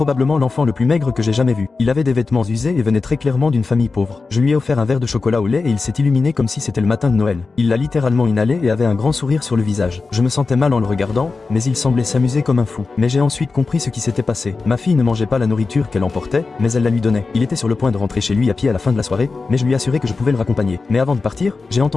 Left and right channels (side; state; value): right; quieter; 4.1 dB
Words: l'enfant le plus maigre que j'ai jamais vu. Il avait des vêtements usés et venait très clairement d'une famille pauvre. Je lui ai offert un verre de chocolat au lait et il s'est illuminé comme si c'était le matin de Noël. Il l'a littéralement inhalé et avait un grand sourire sur le visage. Je me sentais mal en le regardant, mais il semblait s'amuser comme un fou. Mais j'ai ensuite compris ce qui s'était passé. Ma fille ne mangeait pas la nourriture qu'elle emportait, mais elle la lui donnait. Il était sur le point de rentrer chez lui à pied à la fin de la soirée, mais je lui ai assuré que je pouvais le raccompagner. Mais avant de partir, j'ai